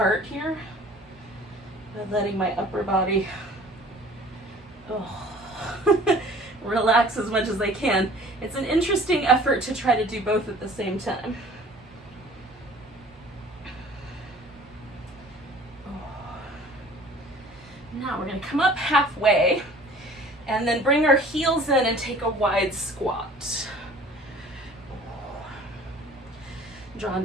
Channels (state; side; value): normal; both; correlation 0.49